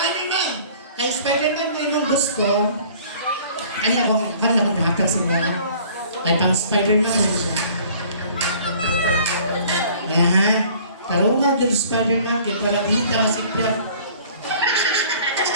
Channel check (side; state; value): both; inverted; correlation -0.52